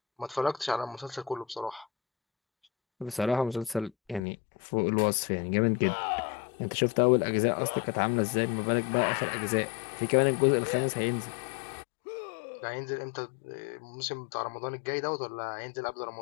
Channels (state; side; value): drops out; right; at 4.2 s